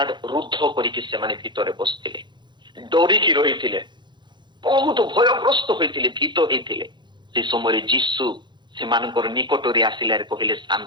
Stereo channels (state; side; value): late; left; 0.22 ms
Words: ରୁଦ୍ଧ କରିକି ସେମାନେ ଭିତରେ ବସିଥିଲେ, ଡରିକି ରହିଥିଲେ, ବହୁତ ଭୟଗ୍ରସ୍ତ ହୋଇଥିଲେ, ଭୀତ ହେଇଥିଲେ। ସେ ସମୟରେ ଯୀଶୁ ସେମାନଙ୍କର ନିକଟରେ ଆସିଲେ କହିଲେ